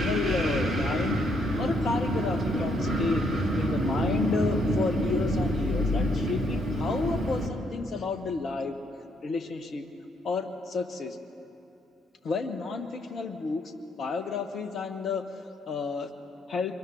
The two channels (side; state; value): both; normal; correlation 0.72